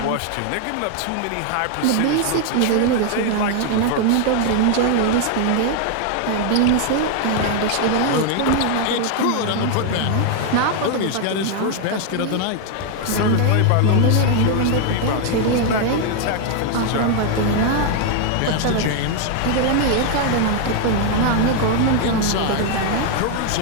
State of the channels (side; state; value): both; different; correlation 0.00